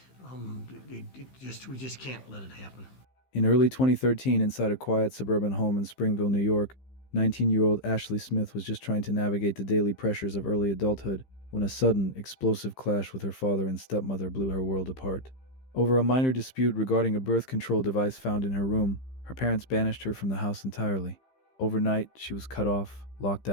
We just can't let it happen. In early 2013, inside a quiet suburban home in Springville, New York, 19-year-old Ashley Smith was just trying to navigate the daily pressures of early adulthood when a sudden, explosive clash with her father and stepmother blew her world apart. Over a minor dispute regarding a birth control device found in her room, her parents banished her from the house entirely. Overnight, she was cut off, locked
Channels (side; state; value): right; late; 15 ms